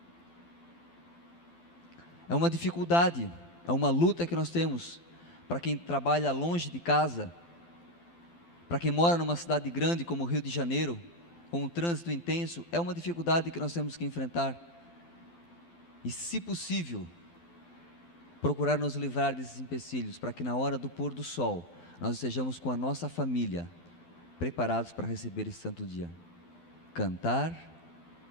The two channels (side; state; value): right; late; 12 ms